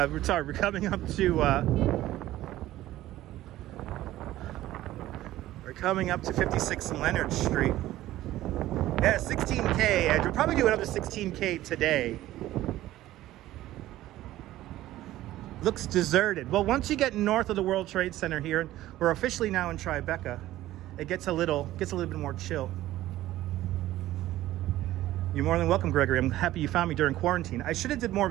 we're coming up to 56 and Leonard Street. Yeah, 16K, and we'll probably do another 16K today. Looks deserted. Well, once you get north of the World Trade Center here, we're officially now in Tribeca, it gets a little bit more chill. You're more than welcome, Gregory. I'm happy you found me during quarantine. I should have did more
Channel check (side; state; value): left; quieter; 15.0 dB